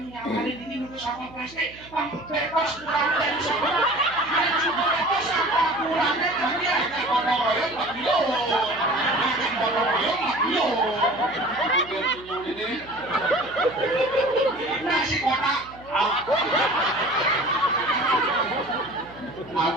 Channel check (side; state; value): right; noise; hum, 21 dB below the sound